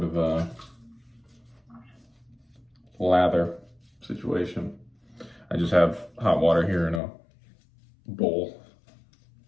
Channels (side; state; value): right; drops out; at 7.0 s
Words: of a lather situation. I just have hot water here in a bowl.